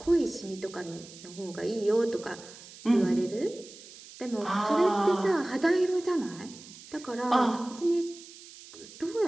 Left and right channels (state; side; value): noise; right; hiss, 18 dB below the sound